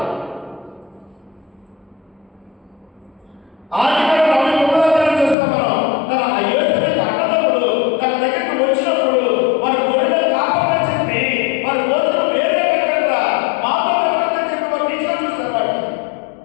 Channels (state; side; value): drops out; right; at 5.4 s